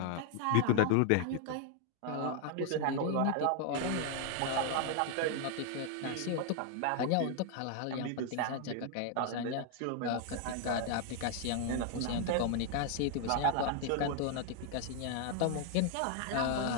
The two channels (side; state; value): both; different; correlation 0.00